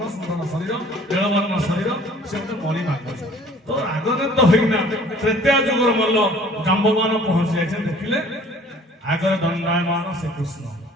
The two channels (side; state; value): both; normal; correlation 0.52